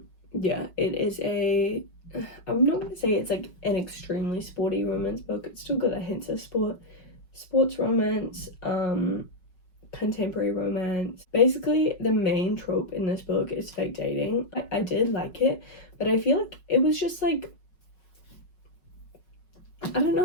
Yeah, it is I'm not going to say it's like an extremely sporty romance book. It's still got a hint of sports romance, contemporary romance. Basically, the main trope in this book is fake dating. I did like it, but I feel like it was just like, I don't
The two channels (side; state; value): right; late; 5.4 ms